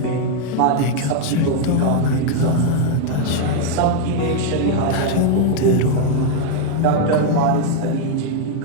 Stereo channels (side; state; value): both; different; correlation 0.00